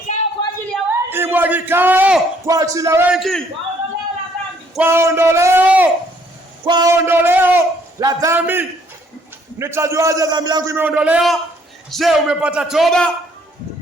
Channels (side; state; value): both; normal; correlation 0.65